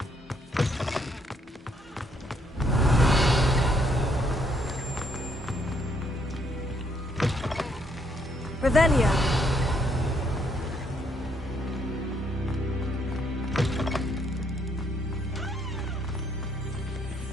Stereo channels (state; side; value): normal; both; correlation 0.71